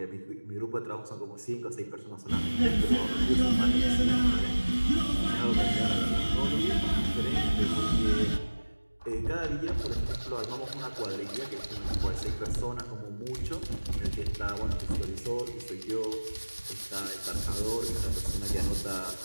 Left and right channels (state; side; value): inverted; both; correlation -1.00